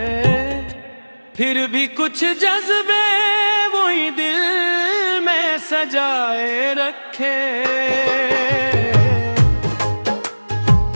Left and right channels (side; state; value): both; inverted; correlation -1.00